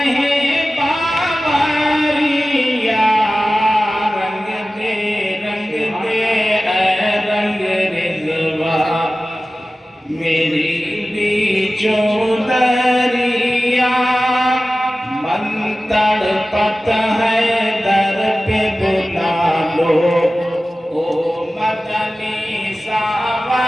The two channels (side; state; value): both; normal; correlation 0.96